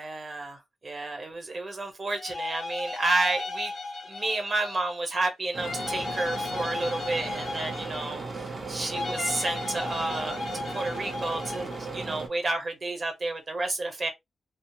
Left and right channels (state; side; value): normal; both; correlation 0.90